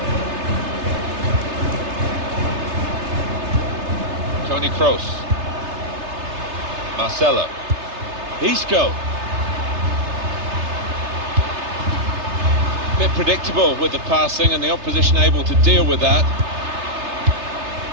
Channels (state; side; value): late; left; 3.3 ms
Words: Toni Kroos. Marcelo. Isco. Bit predictable with the passing and the opposition able to deal with that.